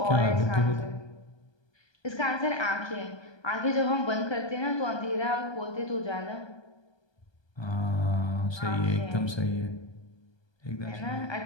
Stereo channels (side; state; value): right; late; 1.2 ms